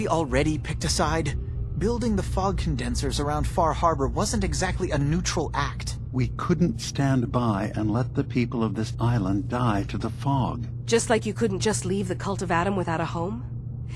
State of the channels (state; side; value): identical; both; correlation 1.00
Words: already picked a side? Building the fog condensers around Far Harbor wasn't exactly a neutral act. We couldn't stand by and let the people of this island die to the fog. Just like you couldn't just leave the Cult of Adam without a home?